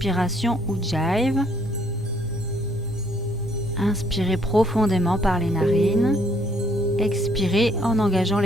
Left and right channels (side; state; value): both; normal; correlation 0.66